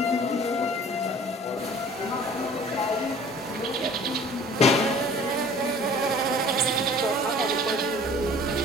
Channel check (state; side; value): normal; both; correlation 0.48